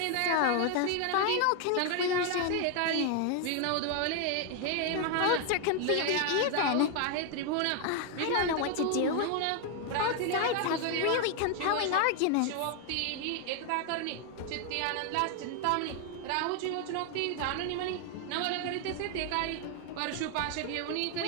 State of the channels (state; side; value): different; both; correlation 0.01